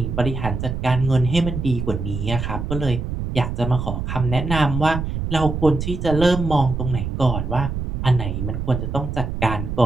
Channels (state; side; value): noise; right; rumble, 4 dB below the sound